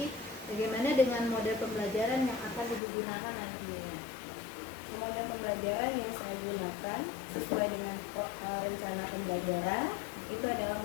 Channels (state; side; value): drops out; right; at 2.8 s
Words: bagaimana dengan model pembelajaran yang akan Ibu gunakan nantinya? Model pembelajaran yang saya gunakan sesuai dengan rencana pembelajaran itu adalah